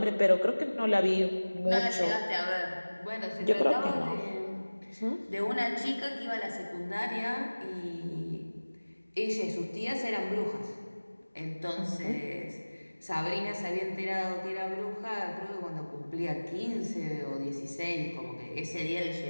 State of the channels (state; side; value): inverted; both; correlation -1.00